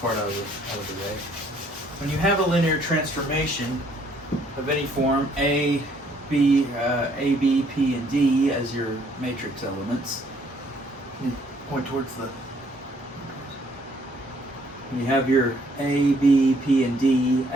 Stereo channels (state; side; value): normal; both; correlation 0.65